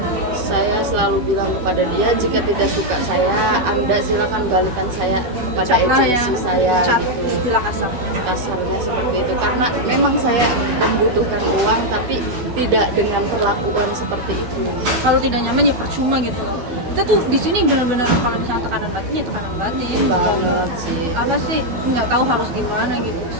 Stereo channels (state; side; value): late; left; 12 ms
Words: saya selalu bilang kepada dia, jika tidak suka saya, Anda silakan balikan saya kepada Cat lah ya, agensi saya. cat Gitu. istilah kasarnya. Kasarnya seperti itu, karena memang saya membutuhkan uang tapi tidak dengan perlakuan seperti itu. Kalau tidak nyaman ya percuma gitu loh. Kita tuh di sini benar-benar kalau misalnya tekanan batin ya tekanan batin. Banget sih. Apa sih, nggak tahu harus gimana gitu.